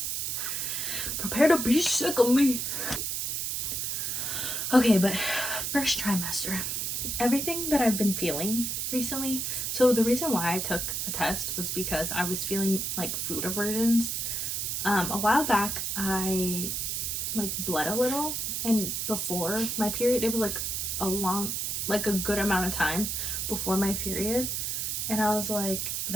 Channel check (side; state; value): right; noise; hiss, 1 dB below the sound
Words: prepare to be sick of me. Okay, but first trimester. Everything that I've been feeling recently. So the reason why I took a test was because I was feeling like food aversions. A while back, I like bled a little, and before my period, it was like a good amount of time before my period, and I was like,